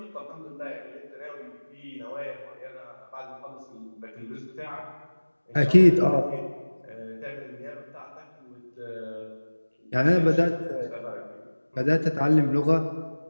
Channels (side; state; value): both; inverted; correlation -1.00